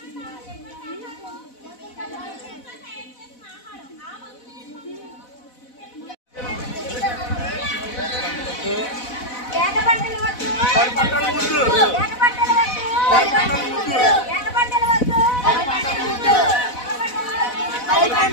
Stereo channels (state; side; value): late; right; 4.0 ms